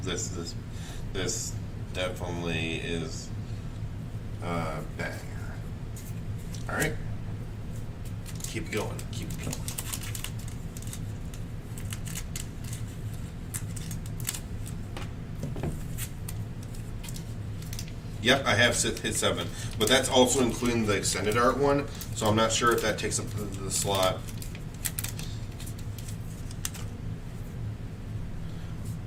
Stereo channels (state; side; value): identical; both; correlation 1.00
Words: definitely is a banger. All right, keep going. Keep going. Yep, I have hit 7, but that's also including the extended art one, so I'm not sure if that takes up the slot.